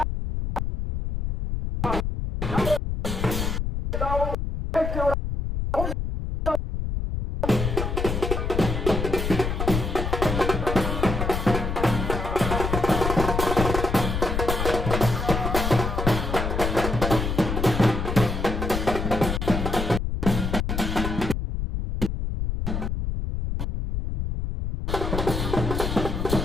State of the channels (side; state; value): left; noise; rumble, 2 dB below the sound